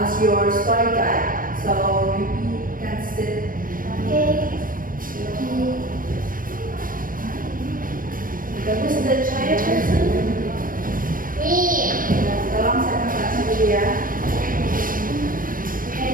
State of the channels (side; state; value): left; late; 0.40 ms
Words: your story guide. So you can sit. Okay. Who's the shy person? Me. Tolong saya kasih dulu ya.